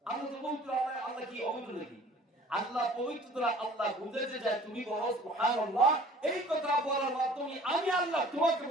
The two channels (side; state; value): both; normal; correlation 0.50